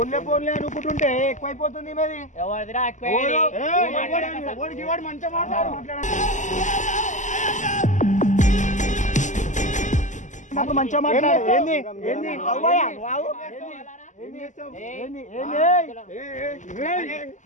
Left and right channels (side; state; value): right; late; 0.36 ms